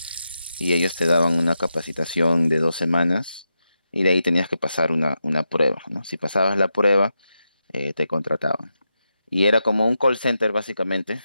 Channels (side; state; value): both; inverted; correlation -0.87